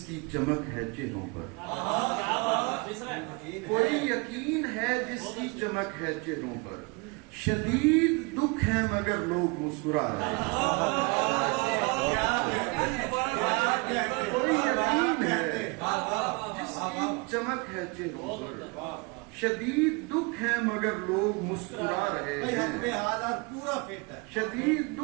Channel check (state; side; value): quieter; left; 29.6 dB